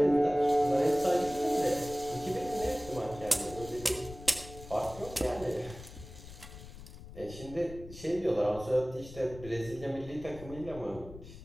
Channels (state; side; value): noise; left; rumble, 15 dB below the sound